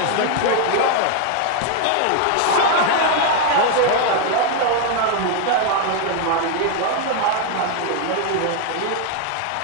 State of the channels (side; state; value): both; different; correlation 0.01